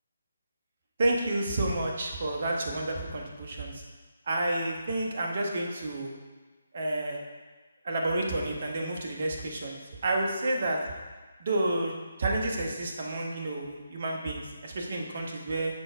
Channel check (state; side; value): inverted; both; correlation -0.83